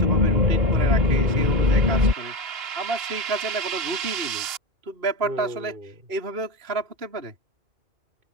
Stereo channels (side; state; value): left; late; 2.9 ms